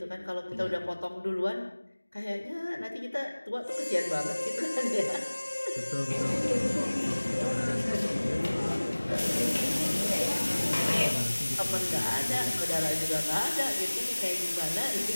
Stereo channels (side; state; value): both; inverted; correlation -1.00